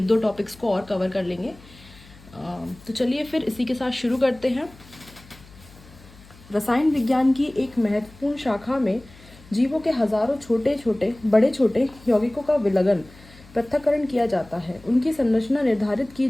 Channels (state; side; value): noise; left; hum, 23 dB below the sound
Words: दो टॉपिक्स को और कवर कर लेंगे। तो चलिए फिर इसी के साथ शुरू करते हैं। रसायन विज्ञान की एक महत्वपूर्ण शाखा में जीवों के हजारों छोटे छोटे बड़े छोटे यौगिकों का विलगन पृथक्करण किया जाता है। उनकी संरचना निर्धारित की